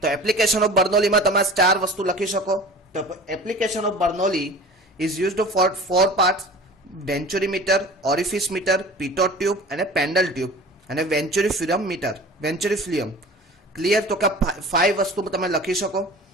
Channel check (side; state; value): both; normal; correlation 0.40